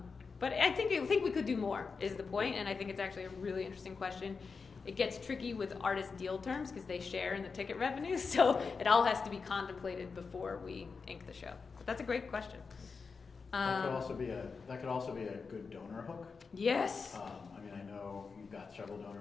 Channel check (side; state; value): right; quieter; 4.9 dB